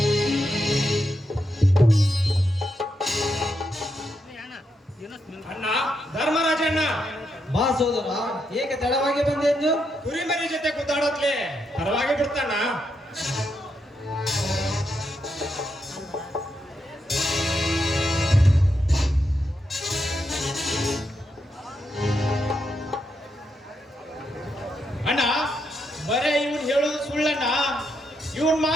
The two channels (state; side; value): normal; both; correlation 0.82